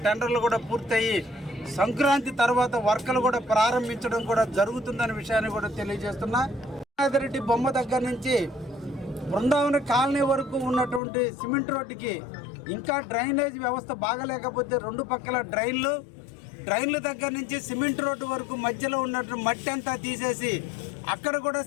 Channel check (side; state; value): right; drops out; at 11.0 s